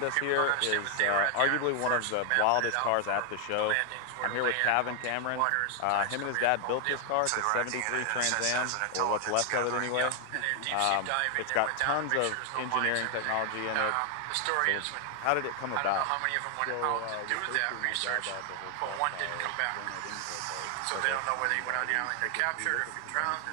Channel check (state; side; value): different; both; correlation 0.00